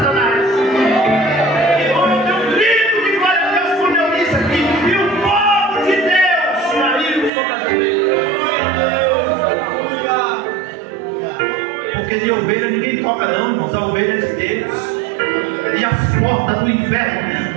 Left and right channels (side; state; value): left; drops out; at 7.3 s